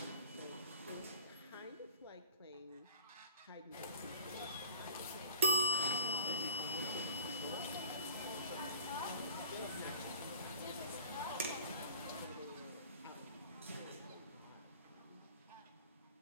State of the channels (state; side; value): inverted; both; correlation -0.44